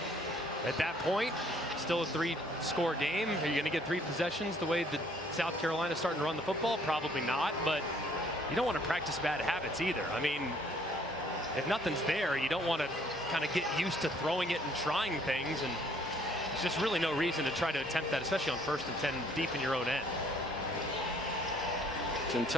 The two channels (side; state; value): both; normal; correlation 0.61